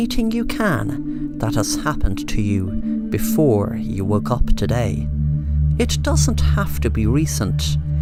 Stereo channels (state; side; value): identical; both; correlation 1.00